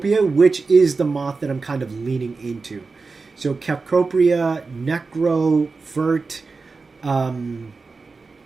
which is the moth that I'm kind of leaning into. So Cecropia, Necro, Vert,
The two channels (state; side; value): quieter; left; 4.2 dB